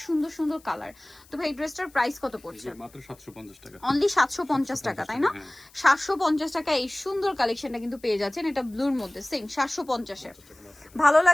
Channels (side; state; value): left; noise; hiss, 27 dB below the sound